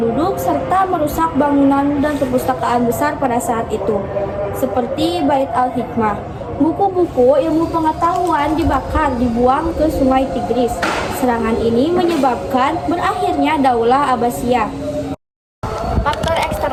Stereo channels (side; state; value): both; identical; correlation 1.00